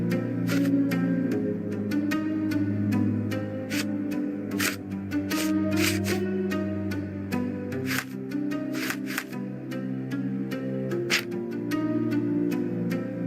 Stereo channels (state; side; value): identical; both; correlation 1.00